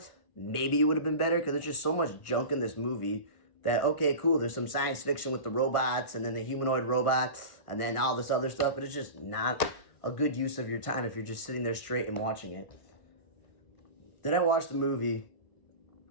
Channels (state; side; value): late; right; 1.6 ms